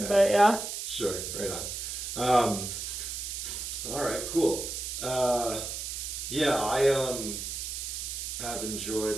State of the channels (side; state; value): right; noise; hiss, 5 dB below the sound